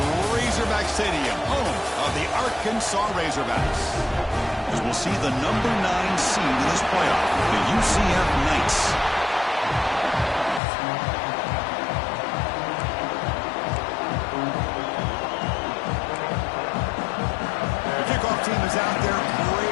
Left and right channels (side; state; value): right; drops out; at 10.6 s